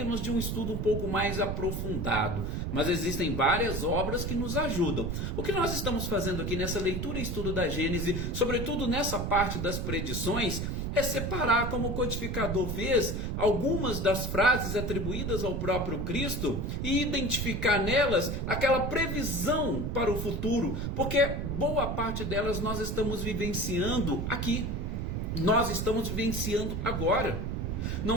de um estudo um pouco mais aprofundado. Mas existem várias obras que nos ajudam. O que nós estamos fazendo aqui nessa leitura e estudo da Gênese, sobretudo nessa parte das predições, é separar, como o codificador fez, algumas das frases atribuídas ao próprio Cristo e identificar nelas aquela previsão para o futuro, porque boa parte delas nós estamos vivenciando aqui, nós estamos vivenciando agora.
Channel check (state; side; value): noise; right; rumble, 2 dB below the sound